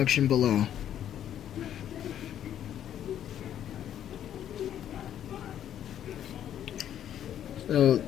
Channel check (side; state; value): right; quieter; 10.5 dB